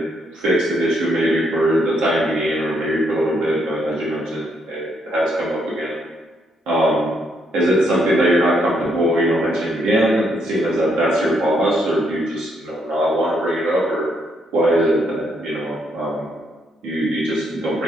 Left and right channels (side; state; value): both; normal; correlation 0.74